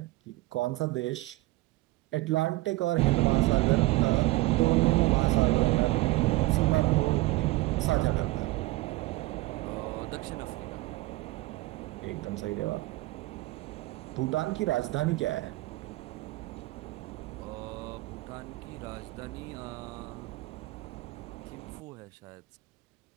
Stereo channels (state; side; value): quieter; left; 19.6 dB